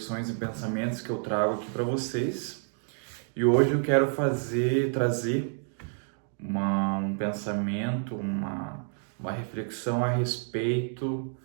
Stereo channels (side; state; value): left; silent; 58 dB below the other